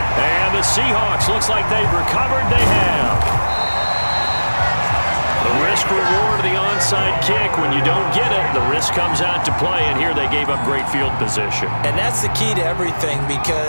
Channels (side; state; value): both; inverted; correlation -1.00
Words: And the Seahawks looks like they've recovered. They have. The risk reward of the onside kick. When you don't get it, the risk comes out to play. And here they gave up great field position. And that's the key to everything